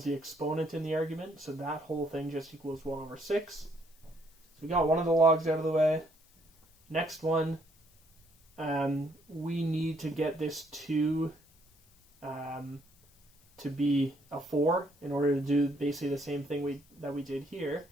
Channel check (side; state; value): left; noise; hiss, 30 dB below the sound